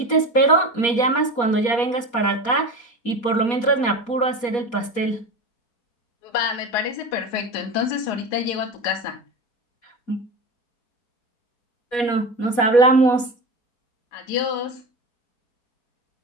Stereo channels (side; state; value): right; late; 4.2 ms